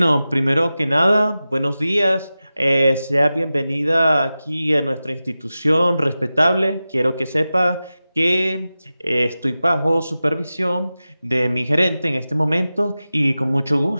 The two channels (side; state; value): both; inverted; correlation -0.94